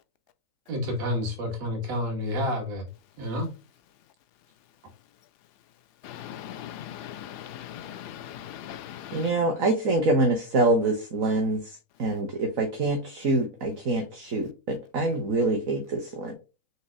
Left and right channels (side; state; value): left; late; 3.4 ms